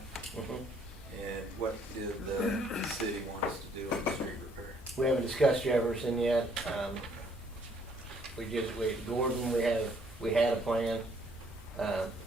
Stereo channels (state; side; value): normal; both; correlation 0.64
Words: And what did the city want us to do on the street repair? We haven't discussed Jefferson yet. Gordon, we had a plan. It